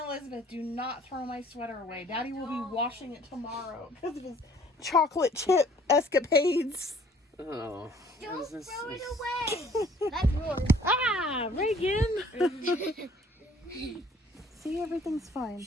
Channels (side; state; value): both; normal; correlation 0.57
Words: do not throw my sweater away. Daddy will be washing it tomorrow because of his chocolate chip escapades. Oh. Don't This is- throw it away. That's yours. Ah, Reagan. See, everything's fine.